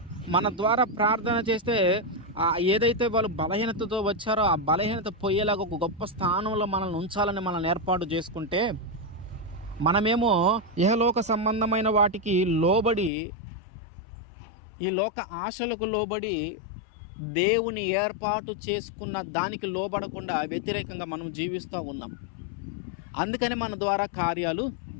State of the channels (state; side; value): drops out; right; at 13.1 s